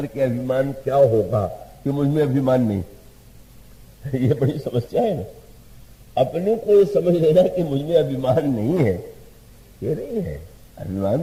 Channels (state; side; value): identical; both; correlation 1.00